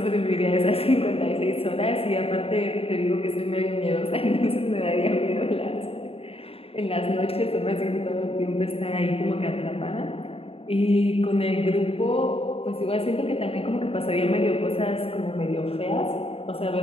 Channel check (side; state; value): right; late; 0.28 ms